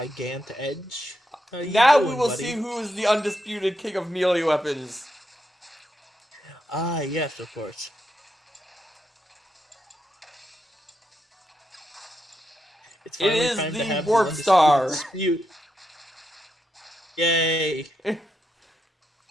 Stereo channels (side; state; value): both; normal; correlation 0.83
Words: Edge. How you Now doing, we will buddy? see who is the undisputed king of melee weapons. Ah, yes, of course. It's It finally is time to the have Warp the Star. dispute. Yay!